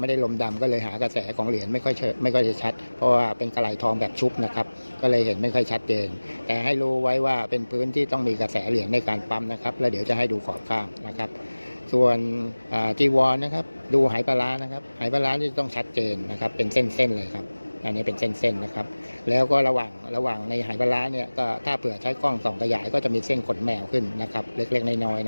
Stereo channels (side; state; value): both; inverted; correlation -1.00